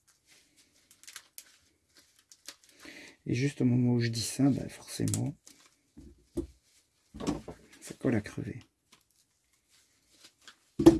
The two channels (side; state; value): both; identical; correlation 1.00